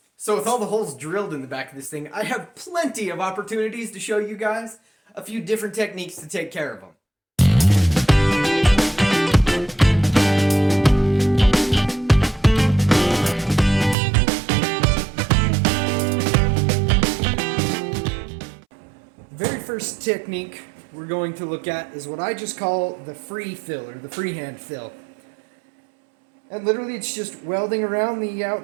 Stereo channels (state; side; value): drops out; left; at 14.0 s